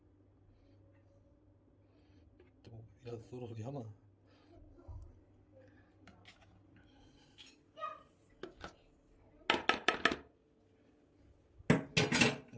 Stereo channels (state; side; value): identical; both; correlation 1.00